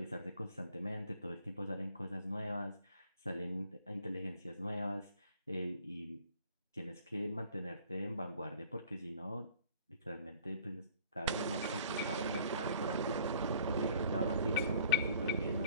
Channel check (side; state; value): both; inverted; correlation -0.54